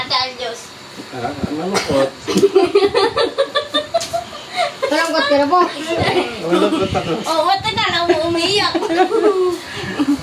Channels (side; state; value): both; identical; correlation 1.00